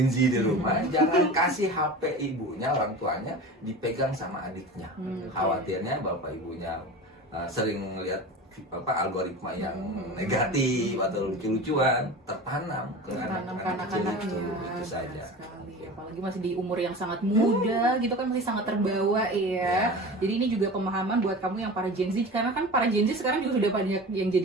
Z di rumah, jangan kasih HP ibunya, orang tuanya dipegang sama adiknya. Khawatirnya bapak ibunya sering lihat algoritma yang negatif atau lucu-lucuan tertanam ke anak-anak kecil itu saja. Apalagi masih di umur yang sangat muda gitu kan, masih sangat terbawa ya. Jadi ini juga pemahaman buat kamu yang para Gen Z, karena kan para Gen Z sekarang juga sudah banyak yang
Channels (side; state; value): both; normal; correlation 0.33